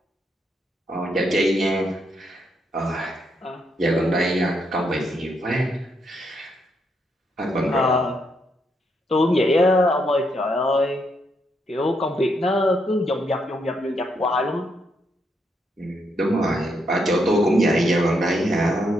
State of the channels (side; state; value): both; normal; correlation 0.77